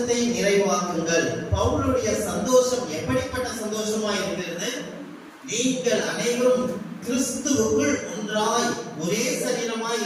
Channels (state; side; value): identical; both; correlation 1.00